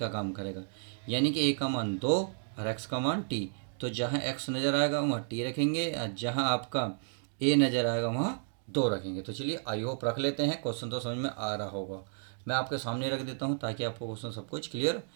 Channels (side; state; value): left; silent; digital silence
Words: काम करेगा, यानी कि a का मान 2 और x का मान t। तो जहाँ x नज़र आएगा वहाँ t रखेंगे और जहाँ आपका a नज़र आएगा वहाँ 2 रखेंगे। तो चलिए आई होप रख लेते हैं, क्वेश्चन तो समझ में आ रहा होगा। मैं आपके सामने रख देता हूँ ताकि आपको क्वेश्चन सब कुछ क्लियर